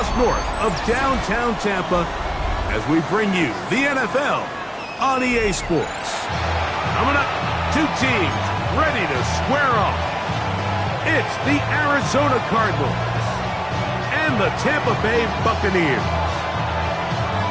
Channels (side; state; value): both; identical; correlation 1.00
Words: north of downtown Tampa, as we bring you the NFL on EA Sports. Coming up, two teams ready to square off. It's the Arizona Cardinals and the Tampa Bay Buccaneers.